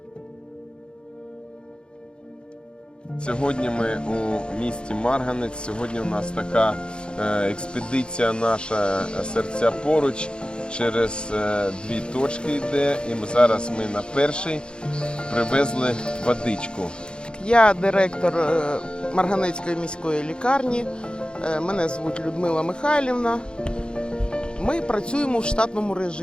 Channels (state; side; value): late; right; 0.052 ms